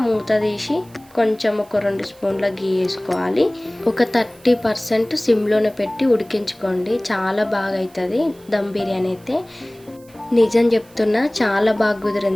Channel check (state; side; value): noise; right; hiss, 27 dB below the sound